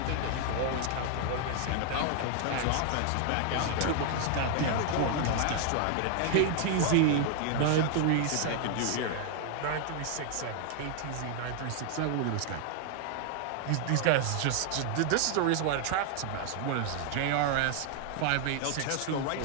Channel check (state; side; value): different; both; correlation 0.00